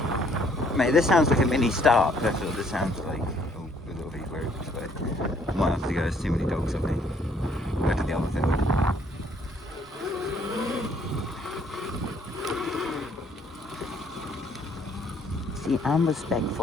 Mate, this sounds like a mini start. That's what this sounds like. Oh, a little bit weird, but I might have to go. There's too many dogs, I think. Go to the other field. See, I'm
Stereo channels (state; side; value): normal; both; correlation 0.64